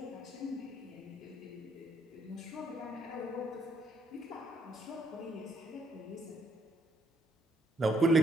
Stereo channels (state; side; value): normal; both; correlation 0.70